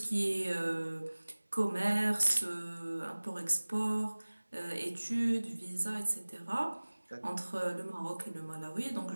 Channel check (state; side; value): inverted; both; correlation -1.00